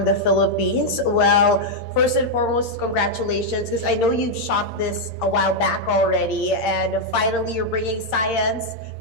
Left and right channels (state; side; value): late; right; 8.7 ms